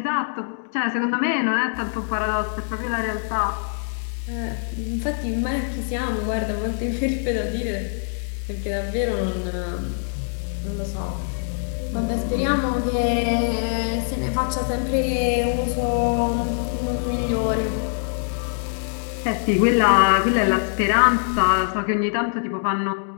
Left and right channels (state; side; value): silent; right; digital silence